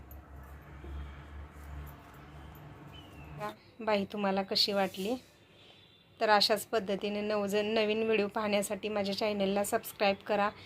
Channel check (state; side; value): identical; both; correlation 1.00